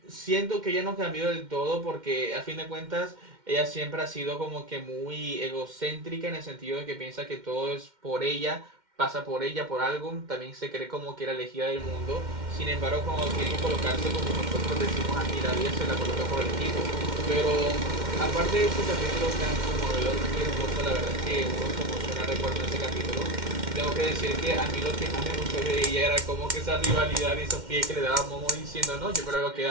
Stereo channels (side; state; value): left; late; 2.1 ms